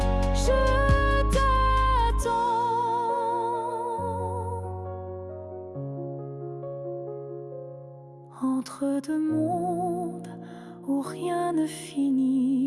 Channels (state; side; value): identical; both; correlation 1.00